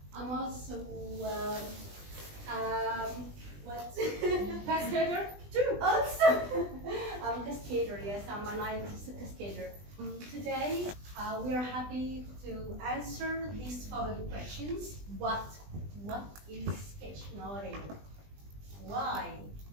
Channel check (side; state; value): left; late; 20 ms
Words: I'm also Cascader too. Also, I'm a cascader. Yes, I'm a NileTESOL cascader. Today, we are happy to answer these following questions. What is sketchnoting? Why?